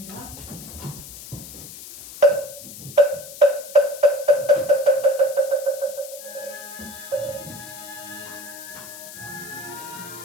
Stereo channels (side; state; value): left; noise; hiss, 14 dB below the sound